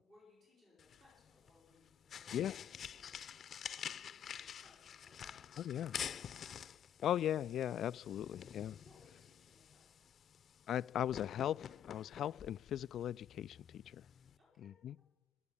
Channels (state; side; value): quieter; right; 10.1 dB